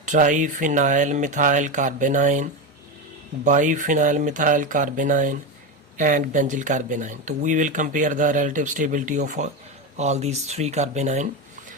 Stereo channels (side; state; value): both; normal; correlation 0.16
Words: triphenyl methyl carbanion, biphenyl methyl carbanion and benzyl carbanion. तो we will compare the relative stability of all these three carbanion.